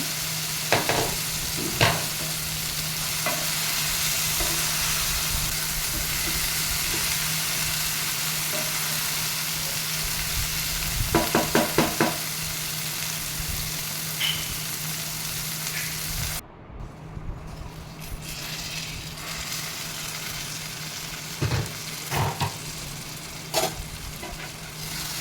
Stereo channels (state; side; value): identical; both; correlation 1.00